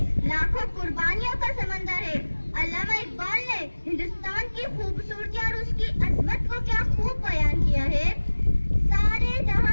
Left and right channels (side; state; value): both; inverted; correlation -1.00